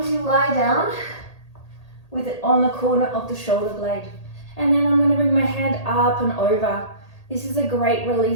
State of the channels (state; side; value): late; right; 1.8 ms